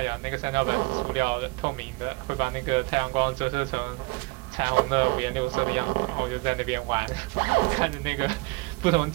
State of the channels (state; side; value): quieter; left; 25.1 dB